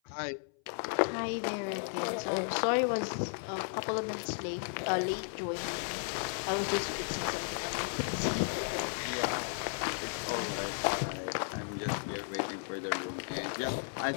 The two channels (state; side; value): silent; right; 55 dB below the other